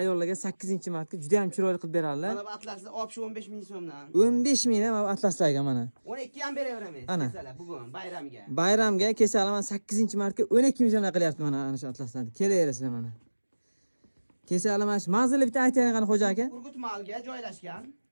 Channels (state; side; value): inverted; both; correlation -1.00